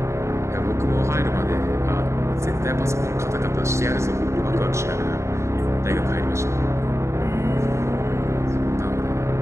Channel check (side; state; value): left; late; 0.14 ms